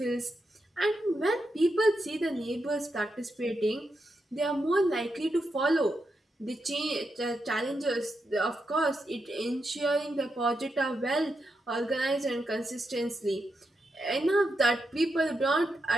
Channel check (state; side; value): normal; both; correlation 0.85